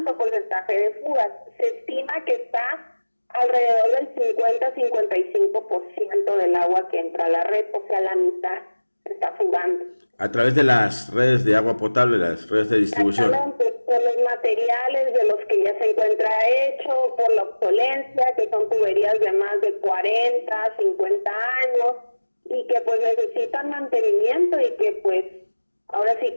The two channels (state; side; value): inverted; both; correlation -1.00